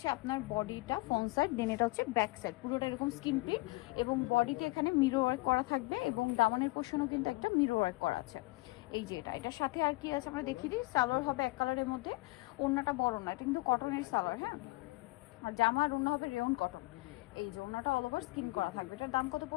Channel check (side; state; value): right; quieter; 23.0 dB